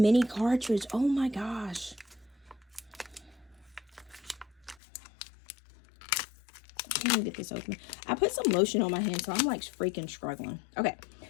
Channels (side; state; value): right; drops out; at 4.8 s